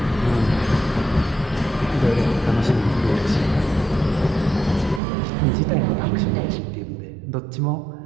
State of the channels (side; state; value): left; drops out; at 5.0 s